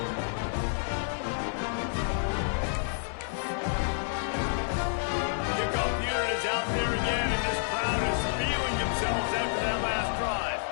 Kickoff unit is out there again, and this crowd is feeling themselves after that last drive.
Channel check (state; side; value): silent; right; digital silence